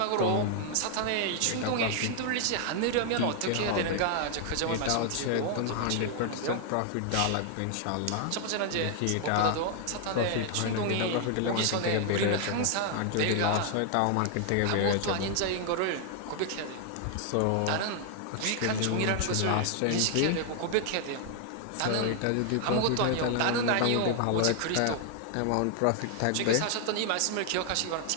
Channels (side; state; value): both; different; correlation 0.00